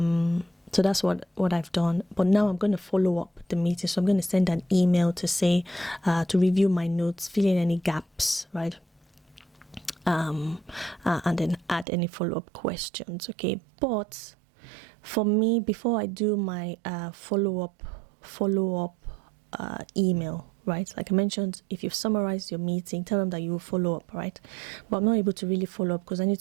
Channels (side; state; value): left; drops out; at 11.9 s